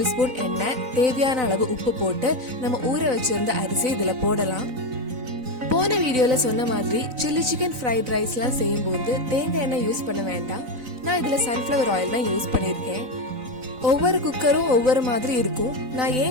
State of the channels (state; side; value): late; left; 4.0 ms